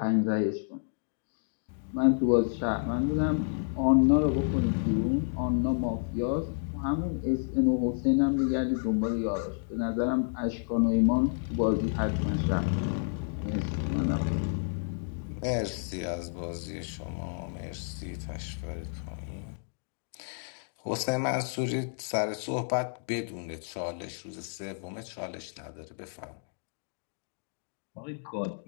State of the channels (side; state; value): right; silent; digital silence